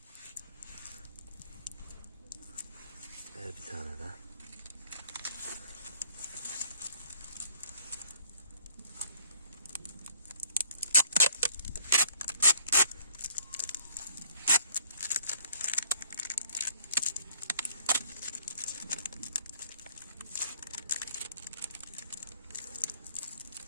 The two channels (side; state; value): both; inverted; correlation -0.60